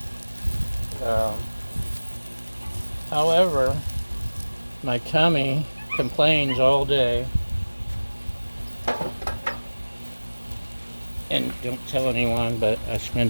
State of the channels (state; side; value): inverted; both; correlation -1.00